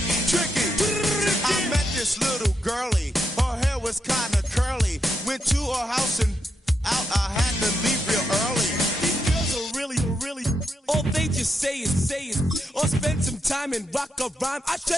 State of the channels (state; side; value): normal; both; correlation 0.83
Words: Tricky. I met this little girlie. Her hair was kind of curly. went to her house and out. I had to leave real early. These girls are really, all they just say is, or spend some time and rock a rhyme. I